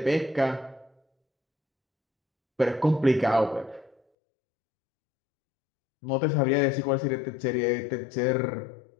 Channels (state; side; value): drops out; right; at 4.0 s